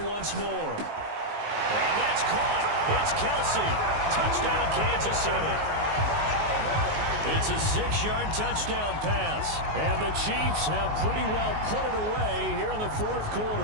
once more. And that's caught. It's Kelsey. Touchdown, Kansas City. It's a 6-yard touchdown pass. And the Chiefs have pretty well put it away here in the fourth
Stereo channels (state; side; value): late; left; 19 ms